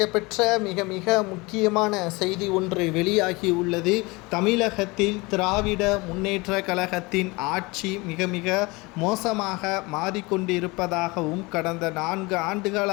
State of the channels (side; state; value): right; quieter; 24.7 dB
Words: மிக முக்கியமான செய்தி ஒன்று வெளியாகி உள்ளது. தமிழகத்தில் திராவிட முன்னேற்ற கழகத்தின் ஆட்சி மிக மோசமாக மாறிக்கொண்டிருப்பதாகவும், கடந்த 4 ஆண்டுகால